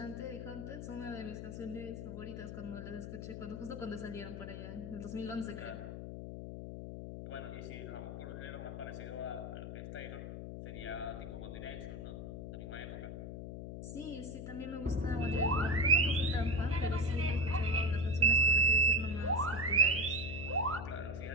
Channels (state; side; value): noise; left; hum, 8 dB below the sound